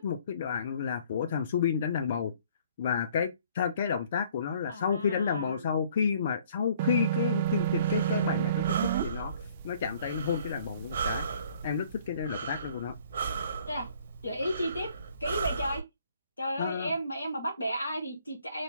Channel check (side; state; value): both; inverted; correlation -0.59